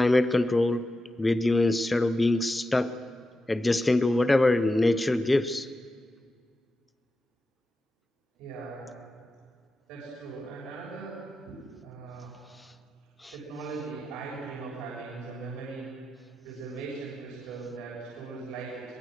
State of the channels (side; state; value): both; normal; correlation 0.91